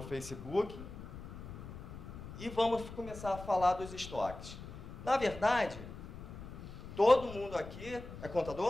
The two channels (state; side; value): noise; left; rumble, 12 dB below the sound